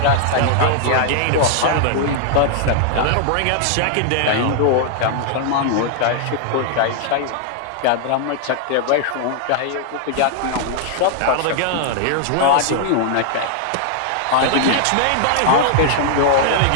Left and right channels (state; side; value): different; both; correlation -0.01